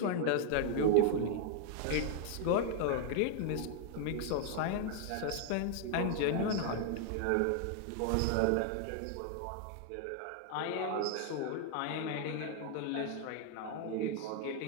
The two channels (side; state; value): both; different; correlation 0.00